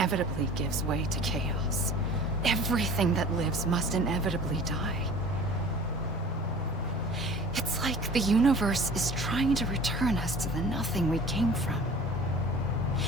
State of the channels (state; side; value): normal; both; correlation 0.44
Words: gives way to chaos. Everything that lives must inevitably die. It's like the universe is trying to return us to the nothing we came from.